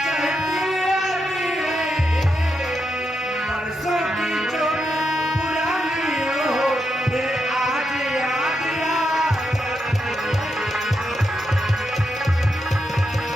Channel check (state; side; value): normal; both; correlation 0.84